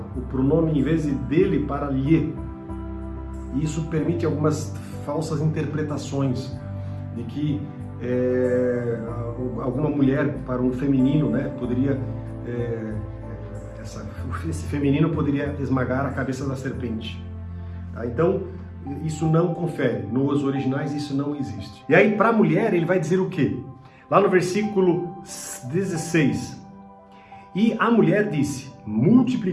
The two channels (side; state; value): both; identical; correlation 1.00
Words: o pronome em vez de dele para lhe. E isso permite algumas falsas interpretações de que alguma mulher para um feminino, né, poderia esse feminino poderia esmagar a cabeça da serpente. Tá? Então isso não confere, nos originais isso não existe. E aí para a mulher ele vai dizer o quê? Lá no versículo 16: e a mulher disse: